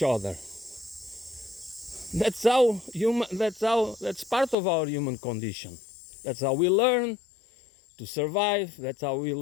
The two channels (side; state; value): right; drops out; at 4.5 s